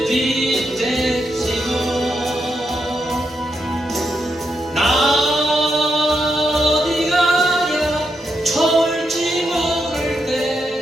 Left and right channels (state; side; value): normal; both; correlation 0.83